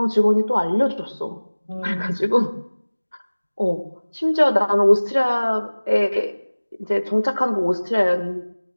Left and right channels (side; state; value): both; inverted; correlation -1.00